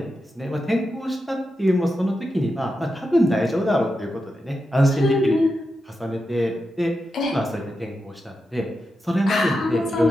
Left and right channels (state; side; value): normal; both; correlation 0.88